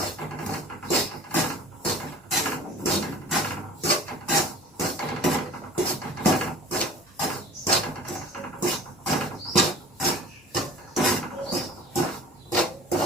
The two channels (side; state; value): both; normal; correlation 0.43